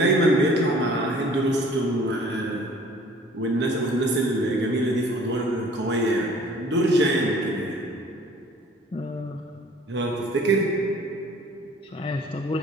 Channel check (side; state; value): both; normal; correlation 0.52